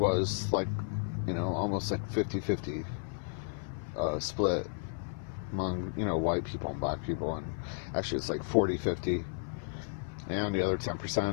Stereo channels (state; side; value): silent; right; 56 dB below the other